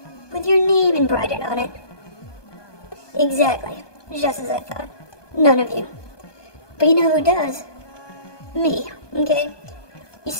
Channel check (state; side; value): late; right; 1.2 ms